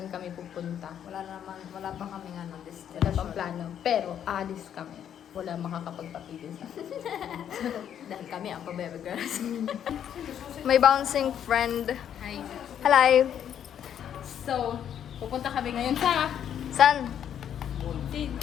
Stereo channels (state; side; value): quieter; right; 9.4 dB